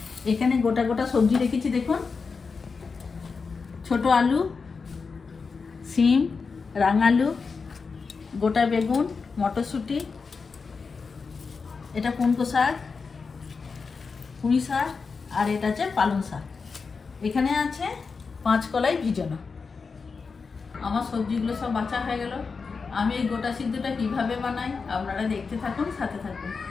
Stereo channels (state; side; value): quieter; right; 4.9 dB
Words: এখানে গোটা গোটা সবজি রেখেছি দেখুন, ছোট আলু, সিম, রাঙালু, গোটা বেগুন, মটরশুঁটি, এটা কুমড়ো শাক, পুঁই শাক, আর এটা হচ্ছে পালং শাক। এখানে আছে 5 কলাই ভিজানো। আমার সবজিগুলো সব বাছা হয়ে গেল। আমি এই গোটা সিদ্ধটা কিভাবে বানাই আপনারা দেখতে থাকুন, সাথে থাকুন।